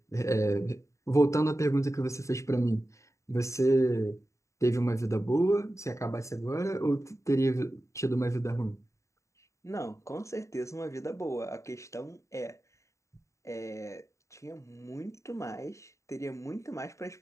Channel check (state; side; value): late; right; 0.14 ms